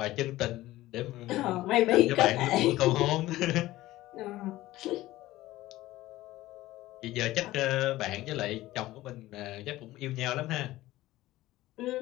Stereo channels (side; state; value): right; quieter; 16.6 dB